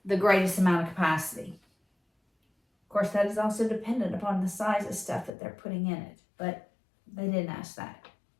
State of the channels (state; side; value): drops out; right; at 5.3 s